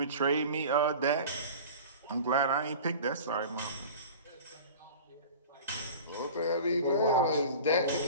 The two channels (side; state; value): both; inverted; correlation -0.38